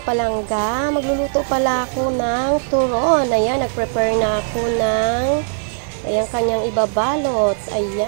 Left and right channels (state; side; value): silent; left; digital silence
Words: palangga, magluluto pala ako ng turon. Ayan, nag-prepare na ako ng kanyang ibabalot.